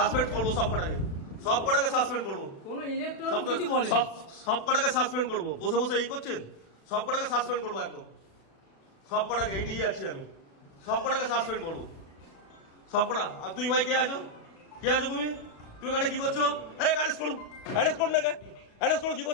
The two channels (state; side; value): late; right; 36 ms